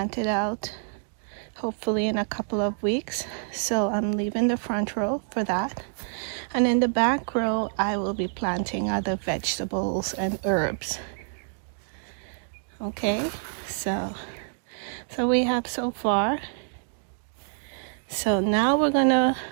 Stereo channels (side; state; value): left; silent; digital silence